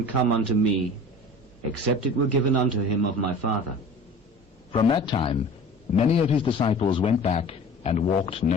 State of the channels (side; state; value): both; normal; correlation 0.41